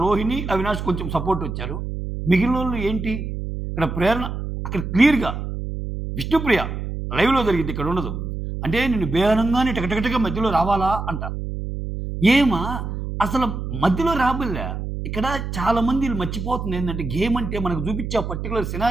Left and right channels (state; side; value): noise; right; hum, 5 dB below the sound